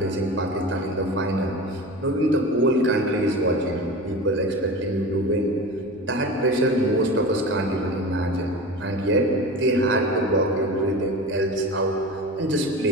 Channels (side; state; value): left; noise; rumble, 29 dB below the sound